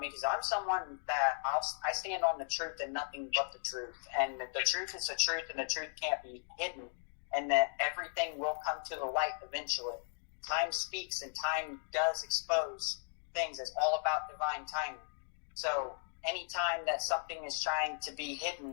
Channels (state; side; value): silent; right; digital silence